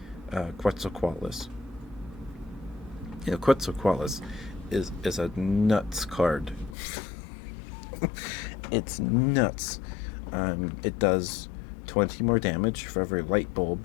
Quetzalcoatlus. Quetzalcoatlus is a nuts card. It's nuts. It does 20 more damage for every light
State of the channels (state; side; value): drops out; right; at 6.8 s